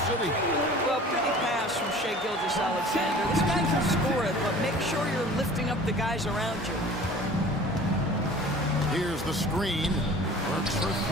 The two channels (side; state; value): both; normal; correlation 0.44